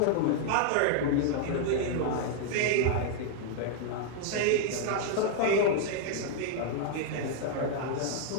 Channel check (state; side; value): different; both; correlation -0.01